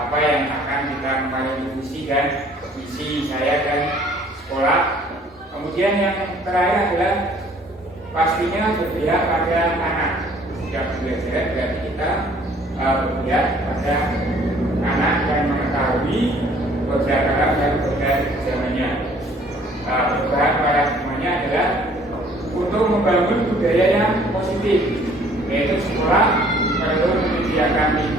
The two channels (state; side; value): normal; both; correlation 0.57